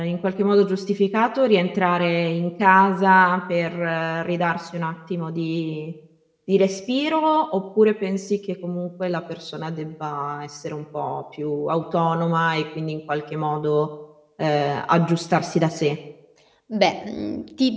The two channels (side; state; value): both; identical; correlation 1.00